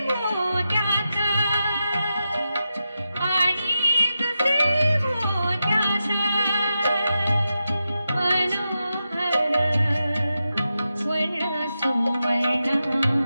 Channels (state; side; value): inverted; both; correlation -0.89